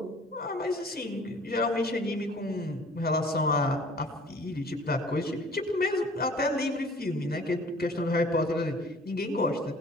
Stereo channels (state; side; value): normal; both; correlation 0.51